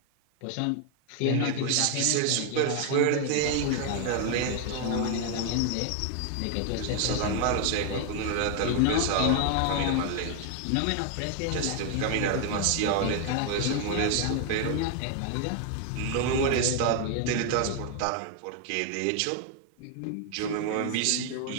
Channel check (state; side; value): different; both; correlation 0.00